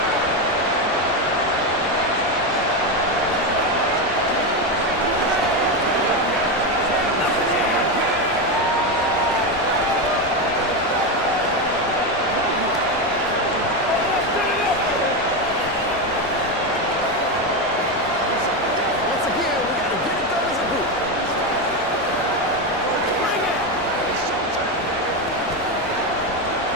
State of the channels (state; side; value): normal; both; correlation 0.12